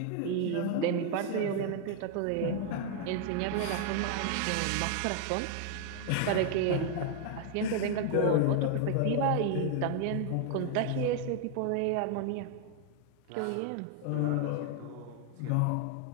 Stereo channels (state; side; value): different; both; correlation 0.00